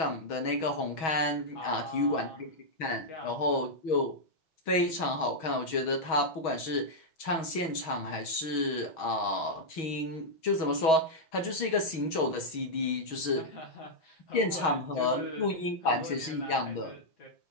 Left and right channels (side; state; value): right; late; 6.3 ms